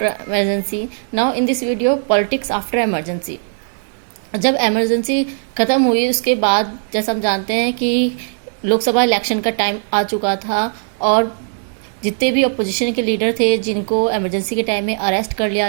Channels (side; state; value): left; silent; digital silence